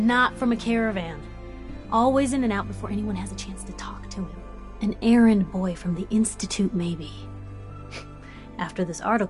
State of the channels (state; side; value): identical; both; correlation 1.00